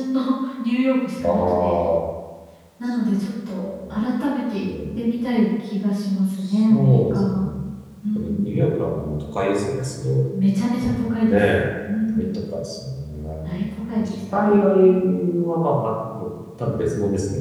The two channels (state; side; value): identical; both; correlation 1.00